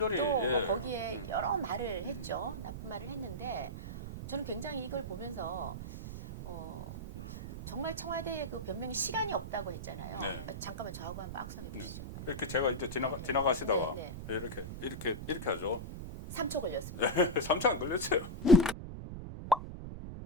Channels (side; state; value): right; noise; rumble, 8 dB below the sound